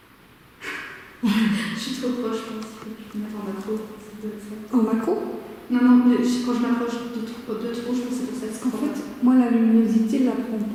Je suis trop proche, je pense. Je peux mettre en macro. Ça doit être ça. En macro? Non, mais quand je m'approche de trop, je pense que c'est pour ça que c'est En fait, moi, la luminosité ne la prend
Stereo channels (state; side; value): identical; both; correlation 1.00